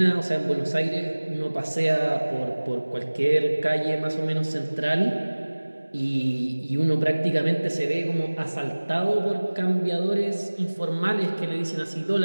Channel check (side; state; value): both; inverted; correlation -1.00